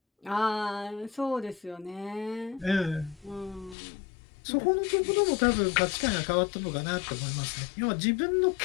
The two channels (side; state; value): right; drops out; at 3.8 s